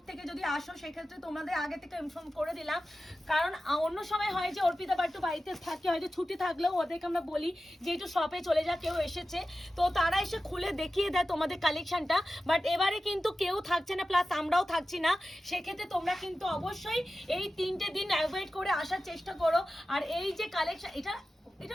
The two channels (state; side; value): normal; both; correlation 0.94